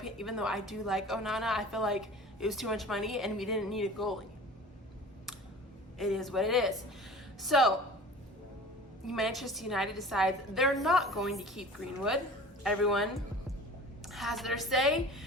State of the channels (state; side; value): normal; both; correlation 0.41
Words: even though I do like Onana, I feel like it was too much money and we didn't need a goalie. It is what it is. So Manchester United decides they're not going to keep Greenwood. Everyone has their say.